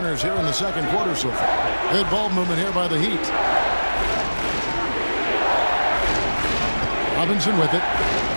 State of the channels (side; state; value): both; inverted; correlation -1.00